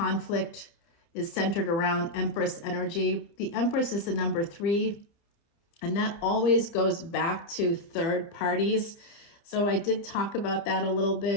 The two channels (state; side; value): late; right; 29 ms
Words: is centered around Empress energy. The Empress is the number 3, and that always goes back to third parties. So I did talk about that a little